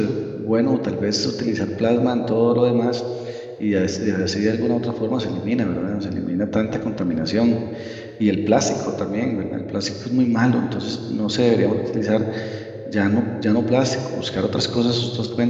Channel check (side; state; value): both; identical; correlation 1.00